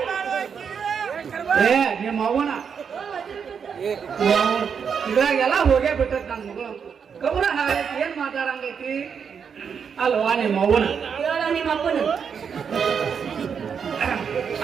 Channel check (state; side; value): quieter; left; 6.8 dB